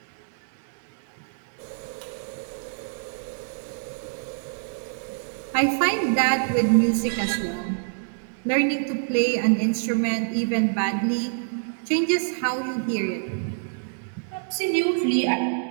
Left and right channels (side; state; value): left; silent; 61 dB below the other